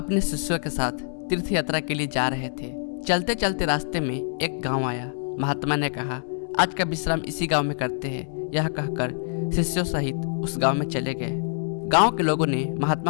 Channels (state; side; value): silent; right; 62 dB below the other